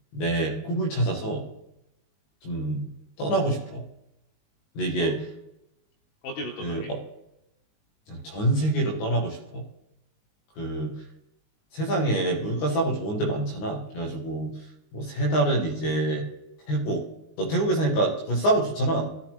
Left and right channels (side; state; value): right; late; 19 ms